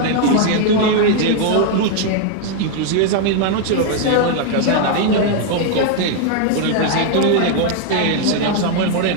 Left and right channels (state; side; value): different; both; correlation 0.00